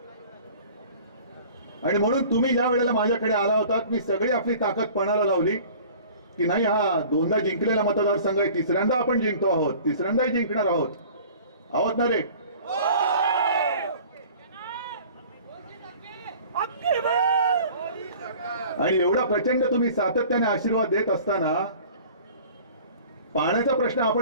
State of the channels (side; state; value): both; inverted; correlation -0.46